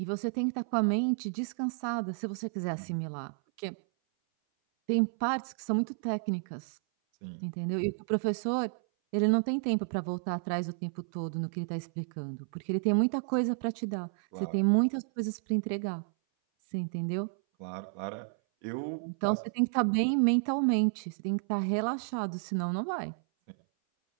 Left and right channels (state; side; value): silent; left; 57 dB below the other